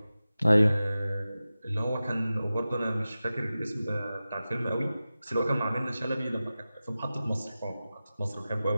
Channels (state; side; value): inverted; both; correlation -0.95